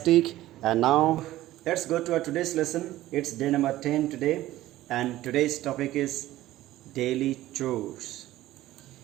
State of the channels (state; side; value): quieter; left; 15.4 dB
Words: And now let's go to our today's lesson. It's day number 10 today, and today's topic is daily chores.